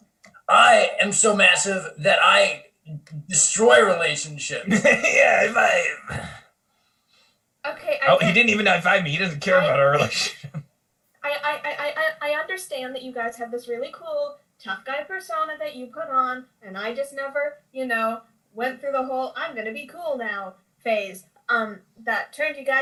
I am so massive that I destroy relationships. Yeah, Okay. he didn't even high-five me. He doesn't care about our relationship. I understand that you guys have this really cool tough guy persona that you put on, and I just never, went through the whole I'm gonna be cool now phase. That turned you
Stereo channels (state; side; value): identical; both; correlation 1.00